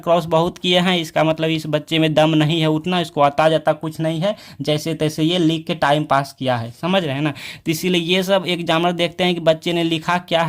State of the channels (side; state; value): both; identical; correlation 1.00